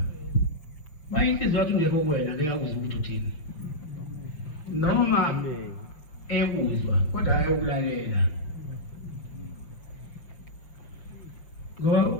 mayinhliziyo yakho ungekho kuwena ngeke akuzwe ukuthi uthini noma ekuzwa kodwa ayokulalela ngoba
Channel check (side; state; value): right; late; 6.4 ms